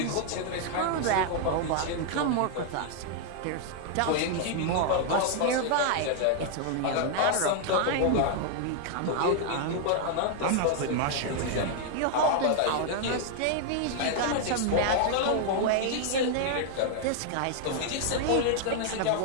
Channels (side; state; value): both; different; correlation 0.00